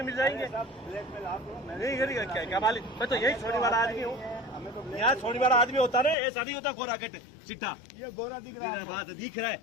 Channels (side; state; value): right; drops out; at 6.2 s